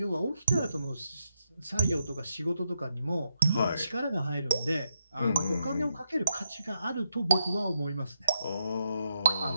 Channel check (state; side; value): inverted; both; correlation -0.82